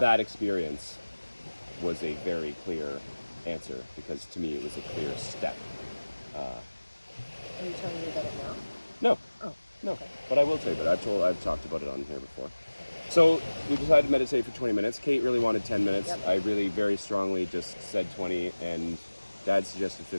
experience was a very clear answer, because to me it was a clear step. Are you telling me about it now? No, Oh, no, okay. but I will tell you about it. I've talked about it on here before. So we decided to meditate for 20 minutes. Kate really wanted 10 minutes. Yep. I really very strongly just said 20, and Dad suggested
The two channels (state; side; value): inverted; both; correlation -1.00